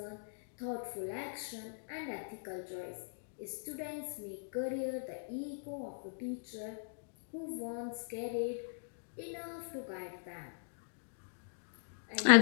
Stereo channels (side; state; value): right; silent; digital silence